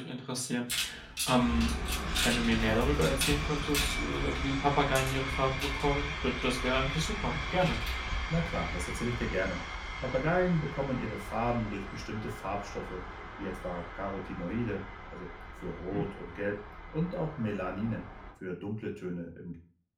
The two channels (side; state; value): both; identical; correlation 1.00